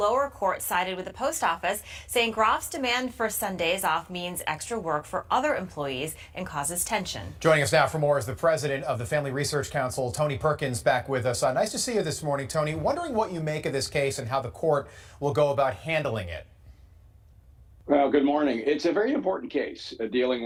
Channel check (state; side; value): identical; both; correlation 1.00